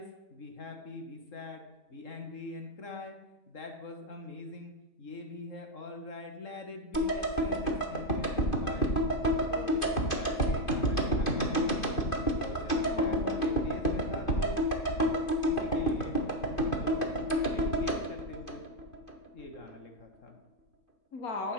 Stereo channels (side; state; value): right; late; 2.5 ms